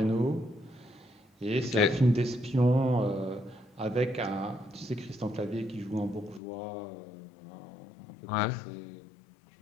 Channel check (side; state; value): right; drops out; at 6.4 s